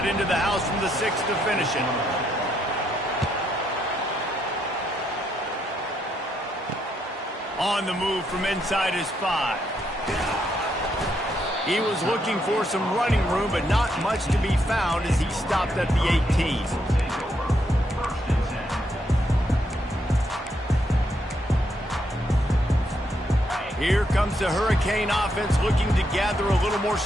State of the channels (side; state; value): both; normal; correlation 0.77